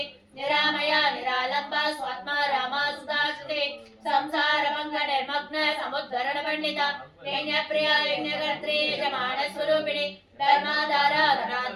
निरामया निरालंबा स्वात्मा रामा सुदाश्रुते संसार भंग निर्मग्न समुद्धरण पंडिता यज्ञ प्रिया यज्ञकर्त्री यजमान स्वरूपिणी धर्माधारा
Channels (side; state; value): both; identical; correlation 1.00